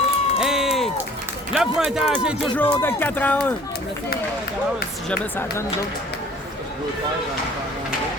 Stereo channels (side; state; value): both; normal; correlation 0.51